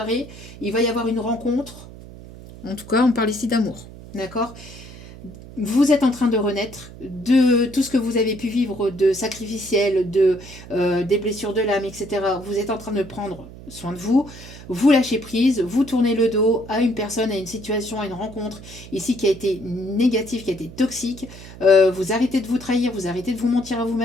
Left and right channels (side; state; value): right; noise; hum, 16 dB below the sound